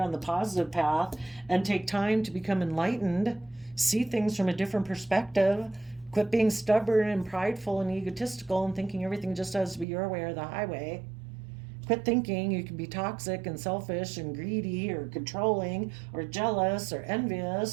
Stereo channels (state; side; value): drops out; left; at 9.9 s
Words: on the positive path and take time to become enlightened, see things from a different perspective, quit being stubborn and prideful and egotistical and thinking everything just has to be your way or the highway. Quit thinking you can be toxic and selfish and greedy or controlling or jealous or